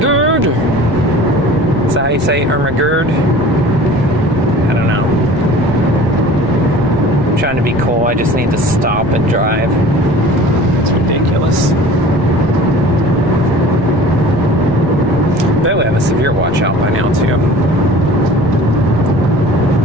Is that how you say Irma-gerd? I don't know. I'm trying to be cool. I just need to stop and drive. It's ridiculous. I bet we have a severe watch out by now, too.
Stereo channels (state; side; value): noise; right; rumble, 13 dB below the sound